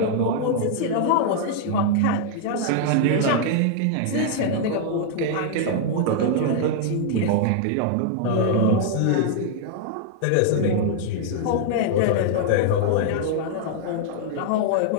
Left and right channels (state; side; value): different; both; correlation -0.01